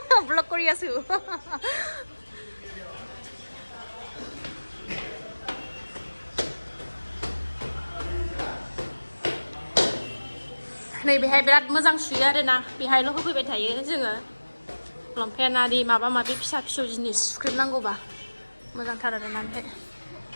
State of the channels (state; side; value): inverted; both; correlation -1.00